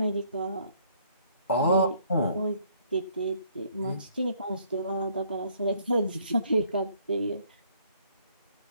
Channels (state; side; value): inverted; both; correlation -0.64